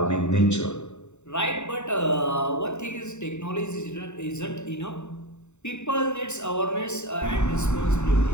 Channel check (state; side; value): late; right; 0.83 ms